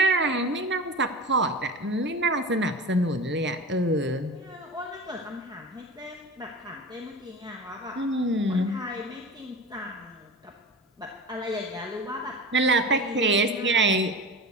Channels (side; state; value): both; normal; correlation 0.31